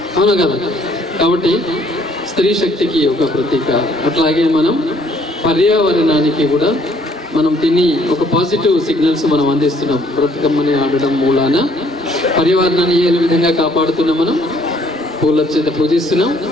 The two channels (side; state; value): both; normal; correlation 0.63